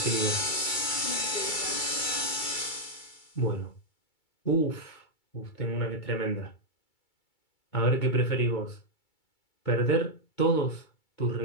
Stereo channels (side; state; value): right; late; 2.3 ms